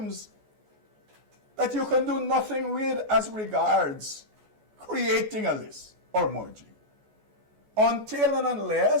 that you can do nothing with as regards creating a list or merging. Until and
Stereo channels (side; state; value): left; late; 14 ms